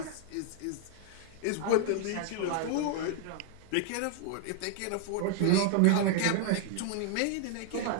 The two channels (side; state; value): both; different; correlation 0.00